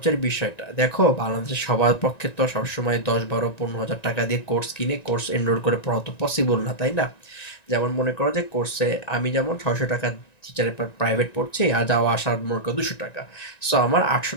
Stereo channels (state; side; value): late; right; 1.9 ms